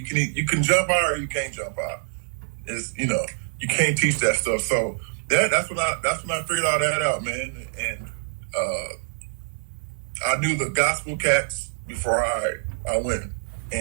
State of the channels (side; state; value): left; silent; 62 dB below the other